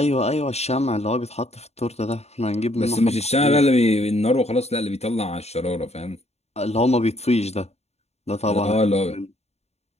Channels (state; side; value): late; right; 0.31 ms